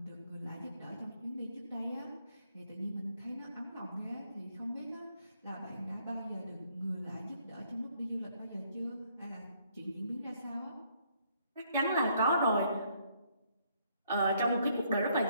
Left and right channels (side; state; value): both; inverted; correlation -0.68